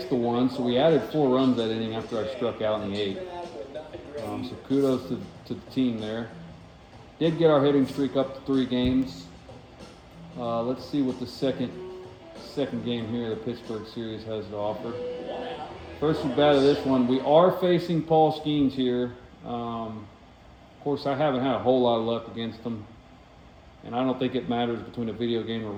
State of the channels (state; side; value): identical; both; correlation 1.00